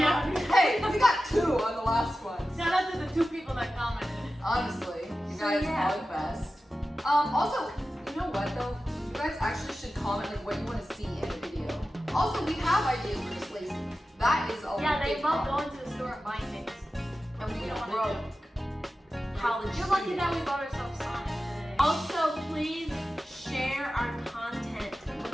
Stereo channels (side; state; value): both; normal; correlation 0.94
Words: Hey, we got 2 on the last one. Shout out to the 2 people that commented. Honestly, you So, guys yeah. are the best. Also, you know what though? You guys actually should comment like what you want to see in the video. Also, we have ideas. We're just lazy. That is a Yeah, they big love problem. going to the store and buying things. And we don't don't wanna broke. College You're lucky students. that we bought ourselves Sonic today. Also, please share our content